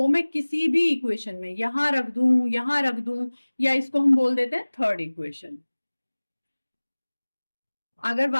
मैं किसी भी इक्वेशन में यहां रख दूं, या इसको हम बोल देते हैं थर्ड इक्वेशन। अगर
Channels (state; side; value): inverted; both; correlation -1.00